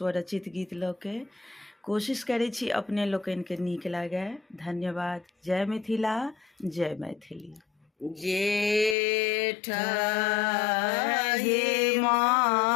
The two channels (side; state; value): right; drops out; at 9.0 s